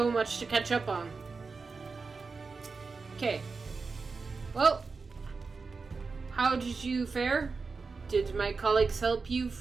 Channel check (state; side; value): quieter; left; 4.5 dB